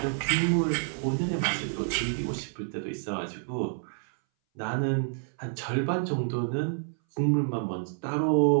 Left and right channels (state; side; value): silent; left; 59 dB below the other